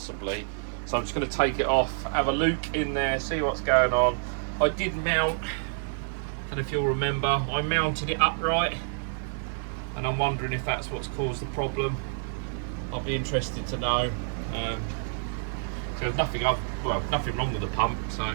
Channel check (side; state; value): left; silent; digital silence